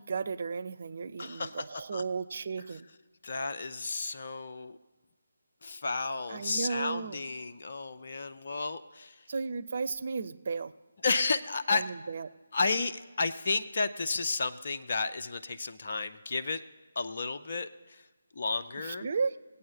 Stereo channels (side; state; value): both; inverted; correlation -0.85